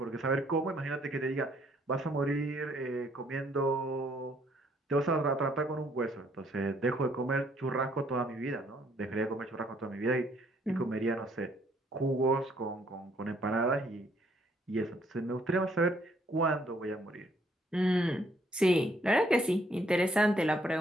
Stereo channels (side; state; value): both; normal; correlation 0.67